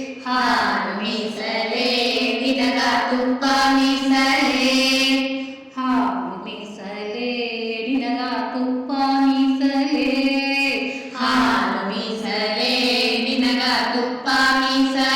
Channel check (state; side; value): identical; both; correlation 1.00